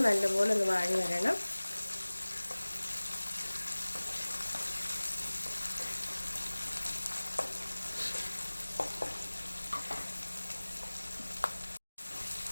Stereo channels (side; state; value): both; inverted; correlation -1.00